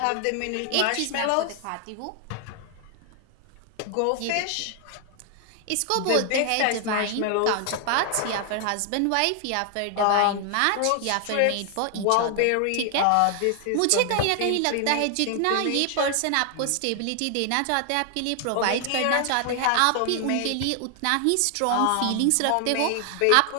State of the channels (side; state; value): both; different; correlation 0.00